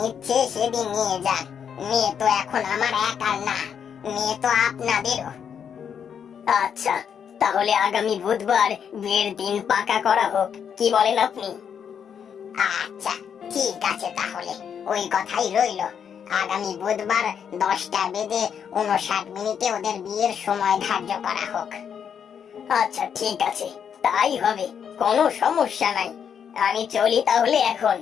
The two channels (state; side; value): quieter; right; 7.8 dB